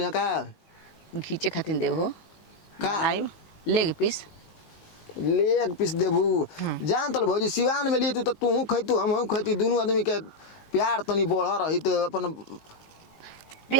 का खींचे खातिर देव हो का आई लेग पीस देबू जान तल भौजी सिवान में लिए तू खैतू हम खैती दोनों आदमी के प्यार तनी बढ़ रही तो अपन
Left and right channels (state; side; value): late; right; 19 ms